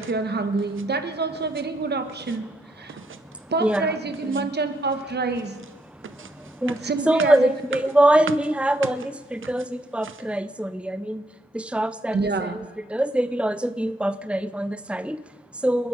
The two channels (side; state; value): both; normal; correlation 0.76